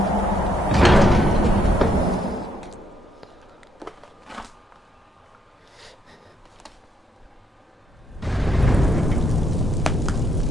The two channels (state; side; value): normal; both; correlation 0.73